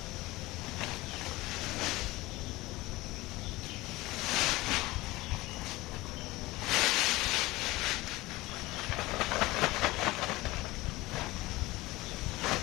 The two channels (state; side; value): quieter; right; 19.8 dB